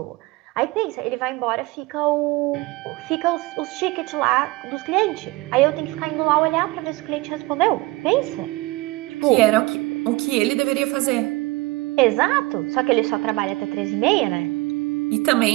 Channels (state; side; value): quieter; left; 21.6 dB